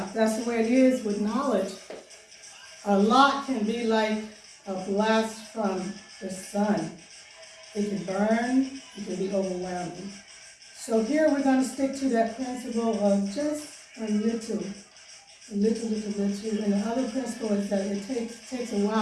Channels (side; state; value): both; identical; correlation 1.00